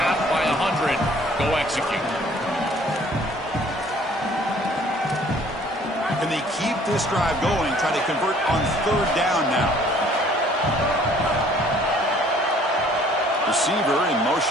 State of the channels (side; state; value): both; normal; correlation 0.56